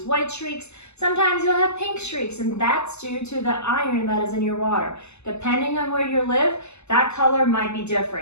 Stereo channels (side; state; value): right; late; 0.81 ms